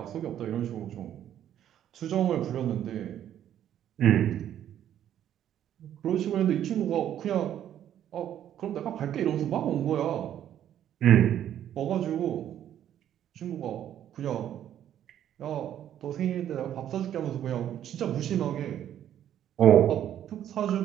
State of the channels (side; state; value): left; quieter; 10.7 dB